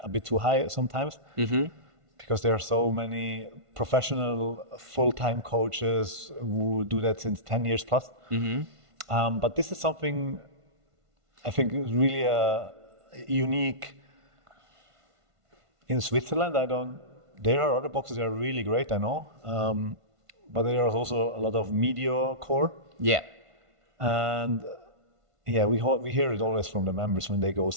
a bit too high sometimes. Because there are so many professional full-time coaches who do that since 10 years plus. But this is something I think is really unique in Switzerland. There are other boxes that are really great, I know. But there is also a lot of media core. Yeah. And we hear it always from the members when they go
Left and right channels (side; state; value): left; late; 1.5 ms